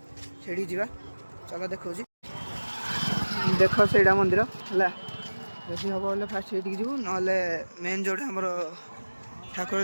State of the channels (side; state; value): both; inverted; correlation -1.00